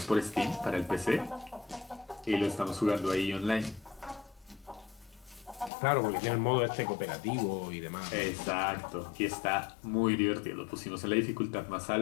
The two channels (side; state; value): right; drops out; at 5.7 s